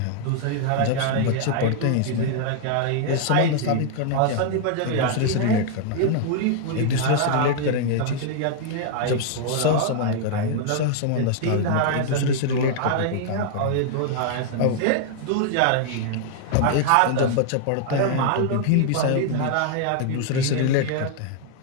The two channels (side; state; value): both; different; correlation -0.01